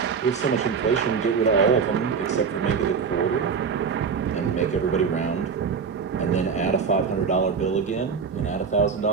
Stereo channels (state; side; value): quieter; left; 5.9 dB